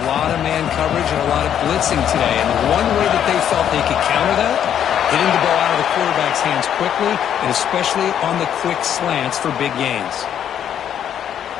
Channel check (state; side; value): quieter; right; 9.6 dB